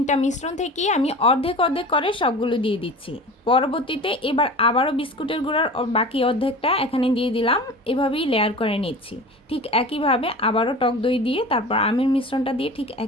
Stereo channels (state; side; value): normal; both; correlation 0.36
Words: মিশ্রণ থেকে আমি অর্ধেক অর্ধেক করে সবগুলো দিয়ে দিচ্ছি। পরবর্তীতে এবার আবারও বিস্কুটের গুঁড়ার বাকি অর্ধেকটা এখানে দিয়ে দিলাম। এভাবেই লেয়ার করে নিচ্ছি। ঠিক একইভাবে আবারও টক দই দিয়ে তারপর আমের মিশ্রণটা দিয়ে ঠিক